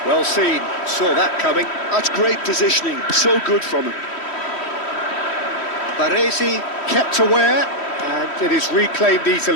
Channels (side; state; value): right; late; 3.1 ms